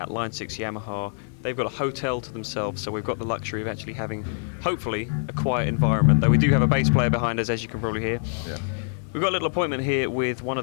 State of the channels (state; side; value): silent; right; digital silence